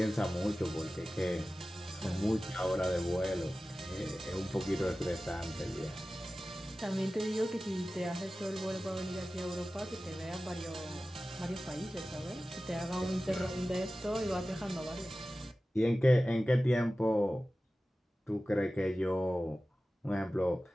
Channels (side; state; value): both; normal; correlation 0.95